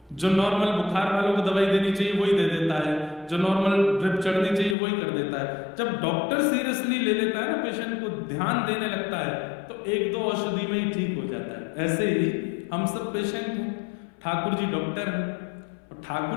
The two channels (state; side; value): drops out; right; at 4.8 s